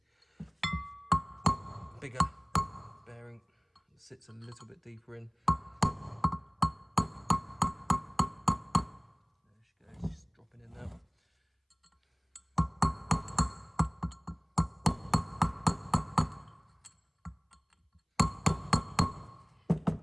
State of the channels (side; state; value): both; identical; correlation 1.00